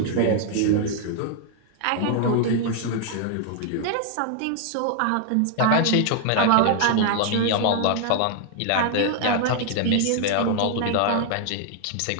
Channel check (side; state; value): both; different; correlation 0.00